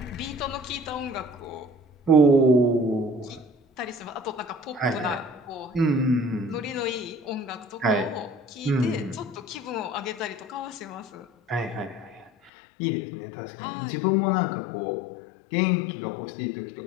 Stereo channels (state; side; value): drops out; right; at 12.5 s